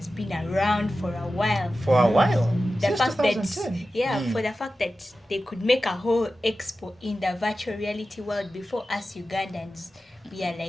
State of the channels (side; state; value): both; normal; correlation 0.94